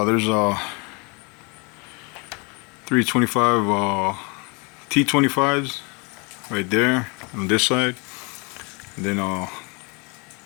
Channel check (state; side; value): quieter; right; 31.3 dB